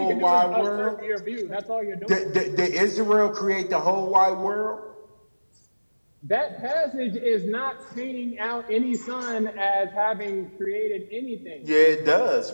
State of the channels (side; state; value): both; inverted; correlation -1.00